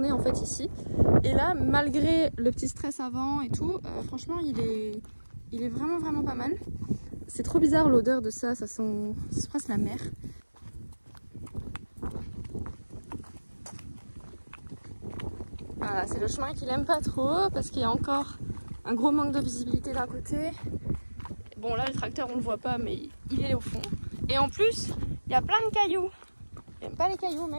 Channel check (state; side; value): inverted; both; correlation -1.00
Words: en fait ici. Et là, malgré le petit stress avant et tout, franchement, il est vraiment vraiment pas mal. C'est trop bizarre l'odeur de ça, ça sent presque la mer. Voilà, c'est le chemin qu'il aime pas trop parce qu'il y a encore un gros manque de visibilité d'un côté. Bon là le tracteur on le voit pas mais il est au fond. Et en plus il y a plein de cailloux. Il n'aime pas les cailloux